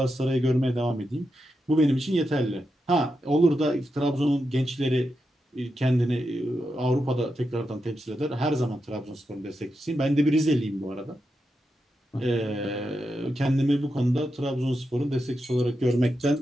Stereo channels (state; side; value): normal; both; correlation 0.87